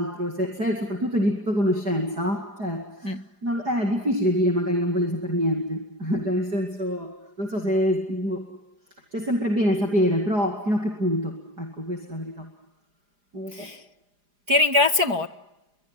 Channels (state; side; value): late; left; 4.9 ms